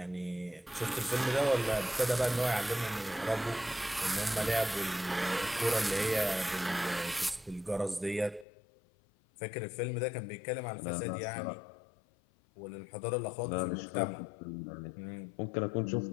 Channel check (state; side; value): drops out; right; at 8.5 s